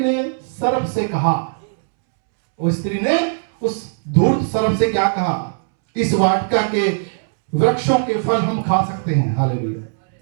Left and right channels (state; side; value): silent; left; 66 dB below the other